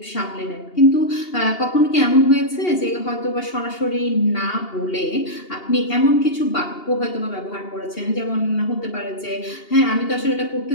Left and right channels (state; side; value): late; right; 2.8 ms